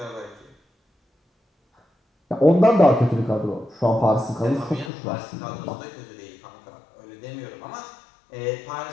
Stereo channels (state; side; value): drops out; right; at 4.9 s